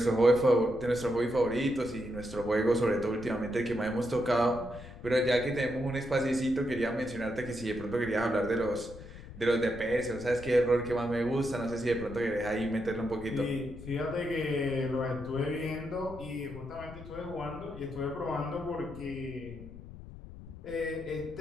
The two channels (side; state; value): left; noise; rumble, 14 dB below the sound